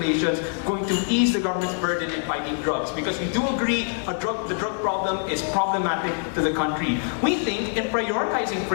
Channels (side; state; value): right; silent; 61 dB below the other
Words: going to ease the government's burden in fighting drugs? Because we do agree the drug problem is problematic to the country. We think in prioritizing